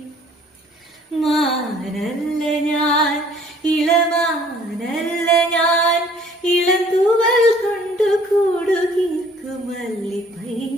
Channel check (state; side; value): normal; both; correlation 0.56